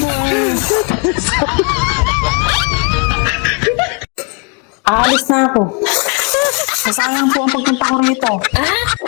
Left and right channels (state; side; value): quieter; right; 33.1 dB